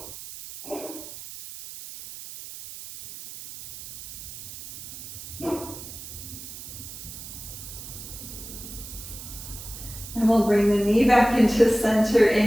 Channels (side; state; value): right; noise; hiss, 12 dB below the sound